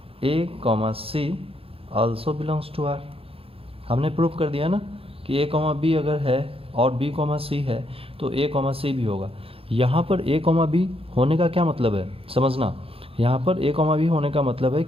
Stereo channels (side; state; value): left; late; 0.27 ms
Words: a comma C also belongs to r। हमने प्रूव कर दिया ना कि a कॉमा बी अगर है और b कॉमा सी है तो a कॉमा सी भी होगा। यहाँ पर a कॉमा बी होने का क्या मतलब है समझना, यहाँ पर a कॉमा बी होने का मतलब है